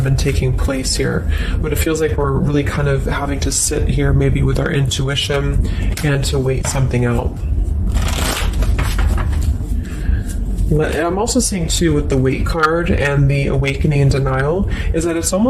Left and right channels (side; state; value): both; identical; correlation 1.00